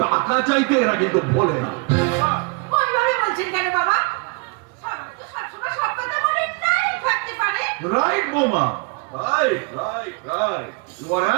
টাকা চাইতে এরা কিন্তু ভোলে না। ওইভাবে বলছেন কেন বাবা? সবসময় সব কথা মনে নাই থাকতে পারে। রাইট বোমা, right right right, you are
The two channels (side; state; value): left; quieter; 32.2 dB